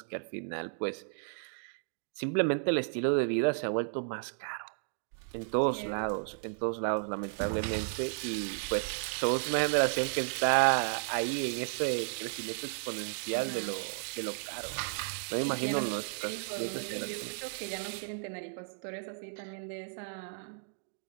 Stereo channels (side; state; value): left; silent; digital silence